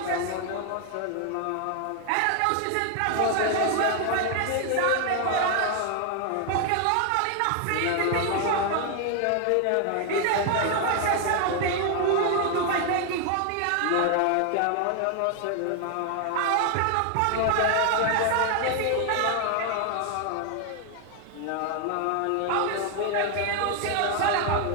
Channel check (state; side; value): different; both; correlation 0.00